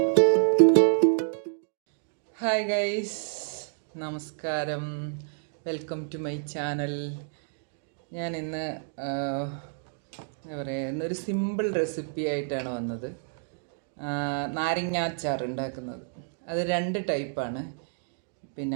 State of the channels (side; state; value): left; silent; digital silence